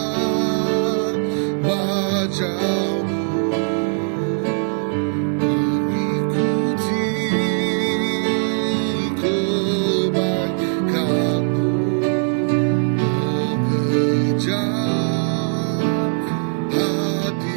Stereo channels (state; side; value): silent; left; 60 dB below the other